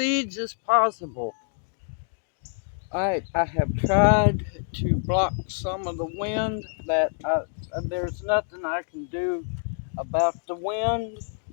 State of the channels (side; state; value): right; silent; digital silence